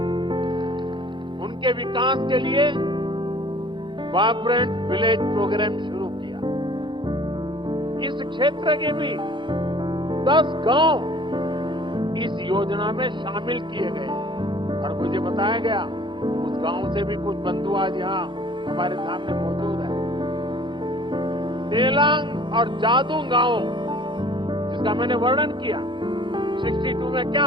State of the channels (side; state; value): left; late; 0.23 ms